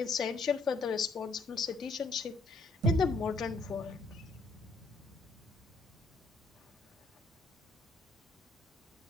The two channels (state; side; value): quieter; right; 3.3 dB